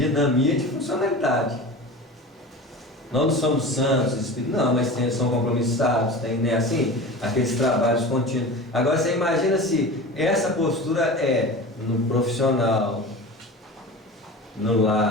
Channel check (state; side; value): normal; both; correlation 0.33